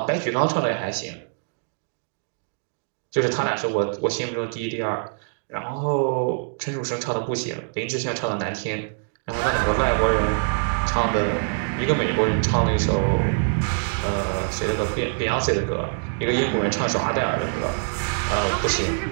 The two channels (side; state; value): left; silent; digital silence